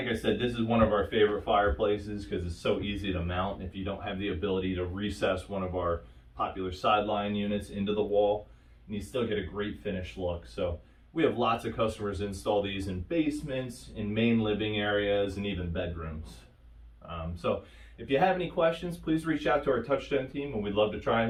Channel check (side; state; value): both; identical; correlation 1.00